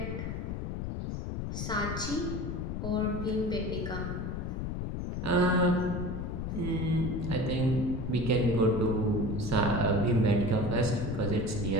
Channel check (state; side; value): noise; left; rumble, 3 dB below the sound